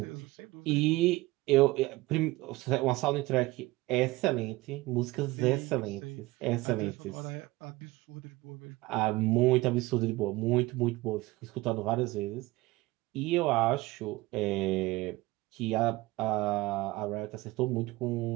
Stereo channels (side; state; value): left; quieter; 20.2 dB